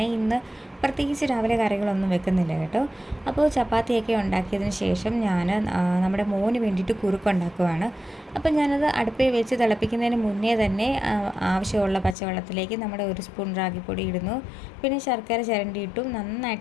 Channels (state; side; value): drops out; right; at 12.2 s